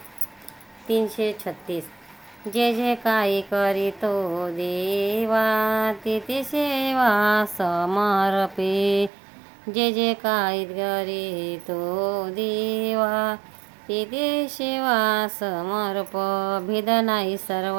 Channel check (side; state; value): left; drops out; at 9.1 s